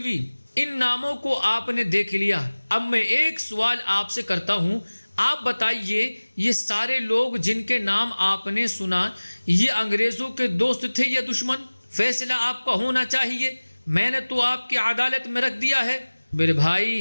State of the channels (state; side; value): inverted; both; correlation -1.00